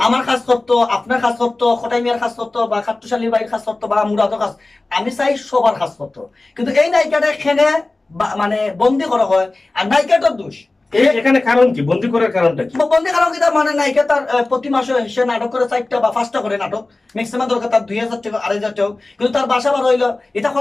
আমার কাজ করতো, আপনার কাজ করতো, খটাই মিয়ার কাজ করতো, বা খাট্টুশালী ভাইয়ের কাজ করতো, বা মুরাদও কাজ, আমি চাই সবার কাজ করতো। কিন্তু এই নায়িকাটা এখানে মানে বন্দি করা হয়, আর নায়িকাটার দোষ। এখানে কারণ কি, বন্দি করার কারণটা কি? বন্দি কারণ কি, মানে নায়িকা তার প্রতি মাসে সে নাটক করে 4টা বা 5টা করে নাটক, ম্যাক্সিমাম দরকার তার 2000 টাকা 2500 টাকা, কিন্তু তার বাসা বার হইলো, এটা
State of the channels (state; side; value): quieter; right; 3.1 dB